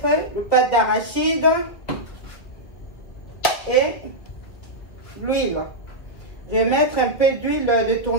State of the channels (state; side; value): late; right; 2.3 ms